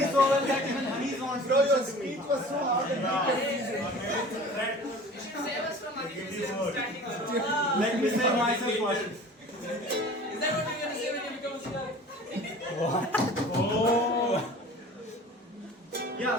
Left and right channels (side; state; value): both; normal; correlation 0.43